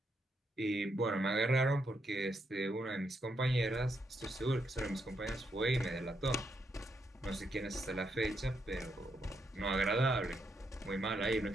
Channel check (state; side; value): normal; both; correlation 0.79